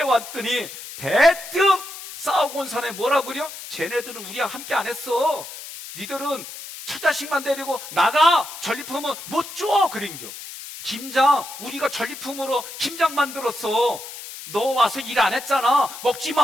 왔더니 대뜸 싸우고 온 사람이 뭐라고 그래요? 쟤네들은 우리와 함께 안 했어. 니들은 처자식만 데리고 나가. 전리품은 못 줘. 그린겨. 김장 우리가 전리품으로 김장 만들었어. 너 와서 일 안 했잖아. 먹지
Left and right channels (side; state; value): left; noise; hiss, 12 dB below the sound